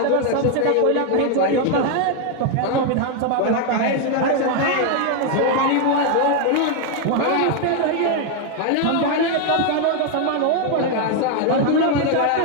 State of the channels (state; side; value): different; both; correlation 0.00